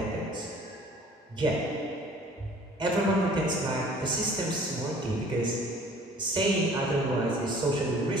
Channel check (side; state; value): both; normal; correlation 0.51